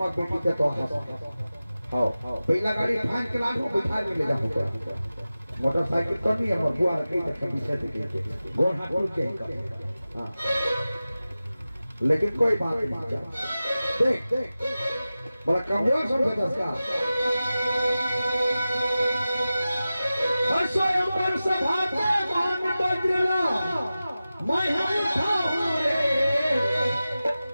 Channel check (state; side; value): inverted; both; correlation -0.95